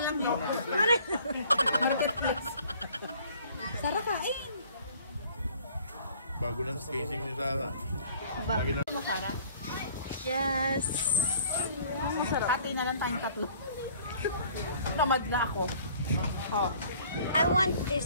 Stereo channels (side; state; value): both; inverted; correlation -0.54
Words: lang yun. Marketplace. Sara kain. Bago ng casing ni Tara. Bago mo, Sara? Yes! Masarap. Pati na lang tayong tatlo. Namad na ako. Oh. I want